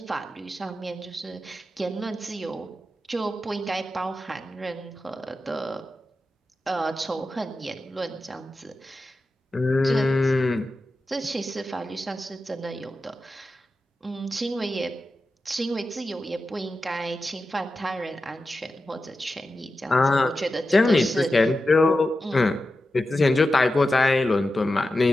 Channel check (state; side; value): normal; both; correlation 0.92